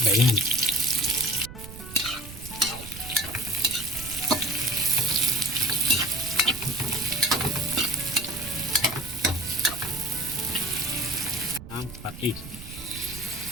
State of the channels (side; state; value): right; noise; rumble, 14 dB below the sound